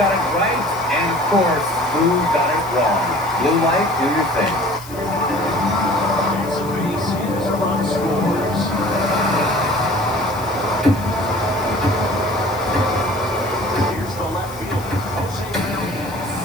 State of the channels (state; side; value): noise; left; hiss, 18 dB below the sound